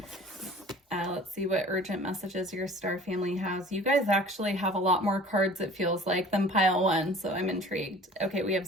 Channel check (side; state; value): both; normal; correlation 0.46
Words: Let's see what urgent messages your star family has. You guys actually have a lot more cards, it feels like, than pile 1, so I'm intrigued. Okay, we have